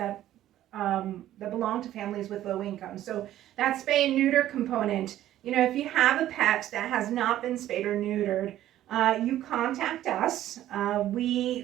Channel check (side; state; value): left; quieter; 13.0 dB